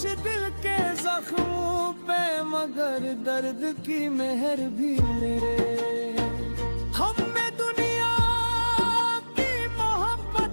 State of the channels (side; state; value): both; inverted; correlation -1.00